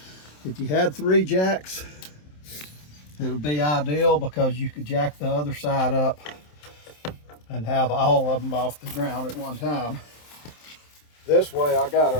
If you had 3 jacks, it would be ideal because you could jack the other side up and have all of them off the ground at one time. This way I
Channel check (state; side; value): late; right; 27 ms